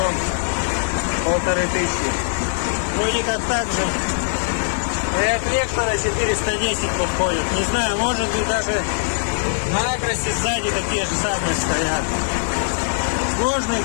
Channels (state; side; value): silent; right; digital silence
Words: 1500. Вроде как так же и от Вектора 410 подходит. Не знаю, может быть даже на Акросе сзади такие же самые стоят. Сложно